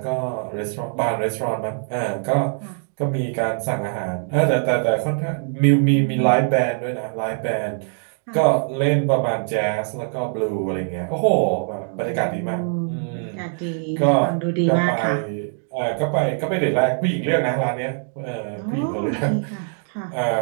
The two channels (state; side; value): silent; left; 64 dB below the other